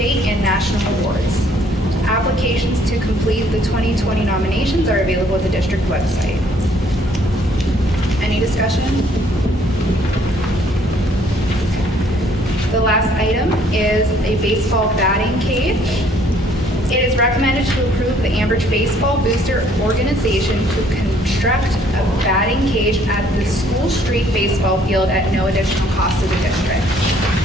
and national awards. Applications to complete the 2020 nominations are available at the district website. Any discussion? The last item is a baseball batting cage. It is recommended to approve the Ambridge Baseball Booster Organization to construct a batting cage at the School Street baseball field at no additional cost to the district.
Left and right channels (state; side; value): normal; both; correlation 0.62